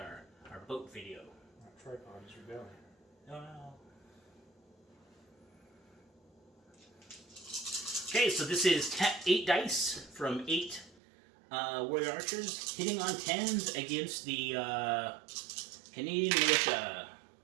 boat video. Tripod is rebelling. No. Okay, so this is 8 dice from 8 warrior archers hitting on 10s against the Canadian militia.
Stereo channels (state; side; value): drops out; left; at 11.0 s